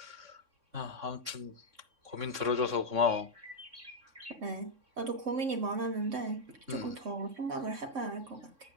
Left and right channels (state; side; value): late; left; 3.6 ms